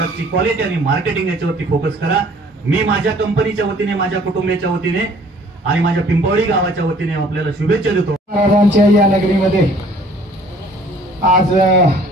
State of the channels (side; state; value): both; normal; correlation 0.55